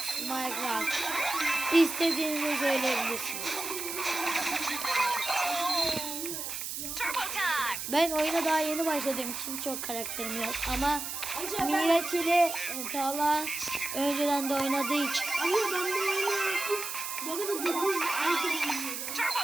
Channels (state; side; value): noise; right; hiss, 5 dB below the sound